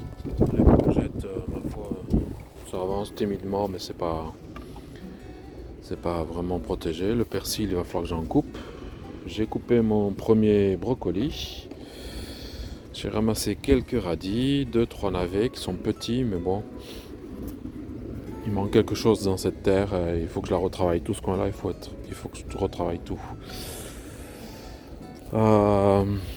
les courgettes, ma foi, ça avance timidement mais c'est pas vraiment protégé. Le persil, il va falloir que j'en coupe. J'ai coupé mon premier brocoli. J'ai ramassé quelques radis, deux, trois navets qui sont petits, mais bon, il manque quelque chose dans cette terre. Il faut que je la retravaille tout ce coin-là. Il faut que je retravaille tout. Euh,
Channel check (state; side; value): identical; both; correlation 1.00